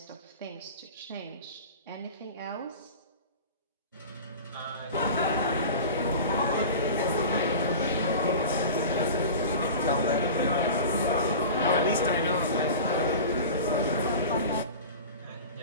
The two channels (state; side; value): inverted; both; correlation -0.34